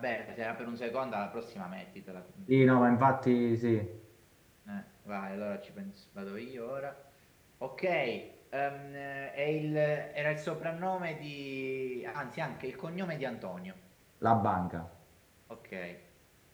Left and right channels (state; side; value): identical; both; correlation 1.00